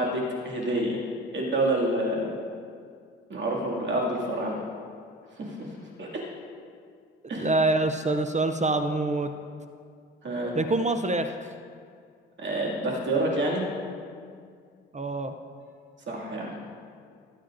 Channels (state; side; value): normal; both; correlation 0.35